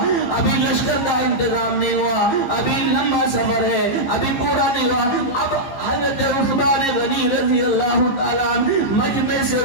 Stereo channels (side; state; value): right; late; 15 ms